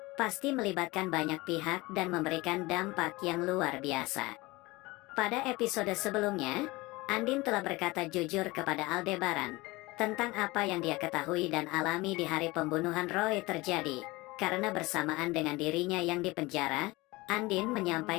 pasti melibatkan banyak pihak dan memberikan dampak yang luar biasa. Pada episode sebelumnya, Andin telah berkata jujur kepada Aldebaran tentang apa yang dia ketahui dan alami di hari pembunuhan Roy terjadi. Karena bersamaan dengan dirinya yang dipenjara, Andin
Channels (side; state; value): right; quieter; 21.9 dB